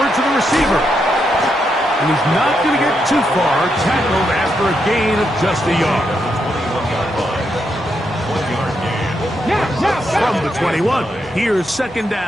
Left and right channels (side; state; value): both; normal; correlation 0.81